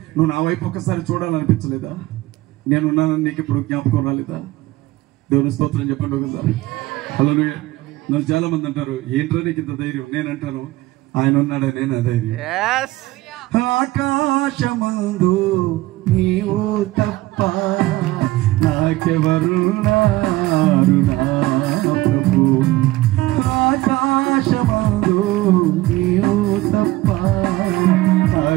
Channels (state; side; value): quieter; left; 18.1 dB